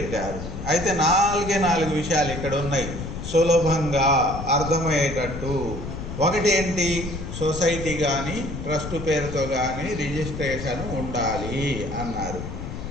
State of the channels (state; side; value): noise; left; rumble, 7 dB below the sound